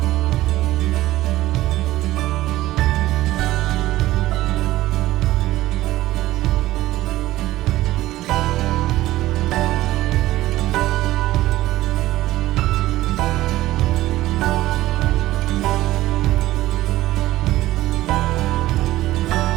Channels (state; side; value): quieter; left; 16.1 dB